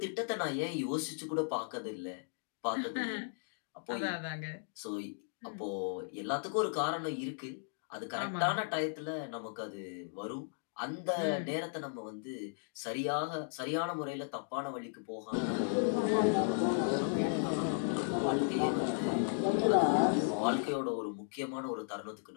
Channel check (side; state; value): right; silent; digital silence